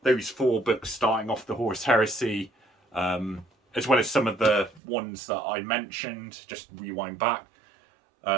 those 4 books starting off the Horus Heresy, as well as some of the ones that I mentioned, just rewind back,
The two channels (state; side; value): drops out; left; at 4.8 s